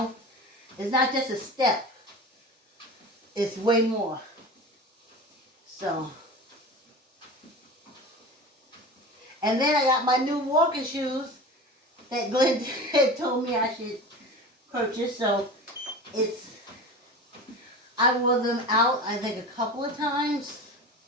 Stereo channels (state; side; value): normal; both; correlation 0.33